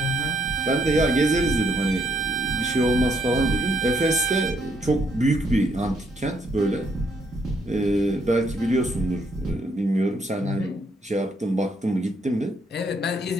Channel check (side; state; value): both; normal; correlation 0.72